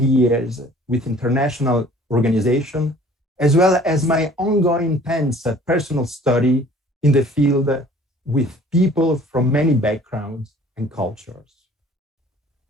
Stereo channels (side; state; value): both; normal; correlation 0.52